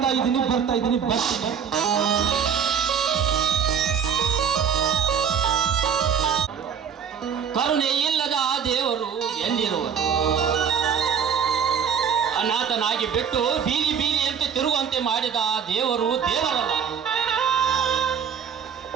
ಇದ್ದೀನಿ. ಕರುಣೆ ಇಲ್ಲದ ಆ ದೇವರು ಎಲ್ಲಿರುವರು? ಅನಾಥನಾಗಿ ಬಿಟ್ಟು ಬೀದಿಯಂತೆ ತಿರುಗುವಂತೆ ಮಾಡಿದ ಆ ದೇವರು ದೇವರಲ್ಲ.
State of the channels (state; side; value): quieter; left; 7.4 dB